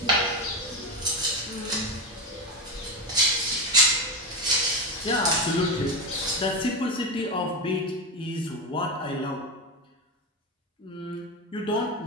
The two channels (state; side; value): normal; both; correlation 0.16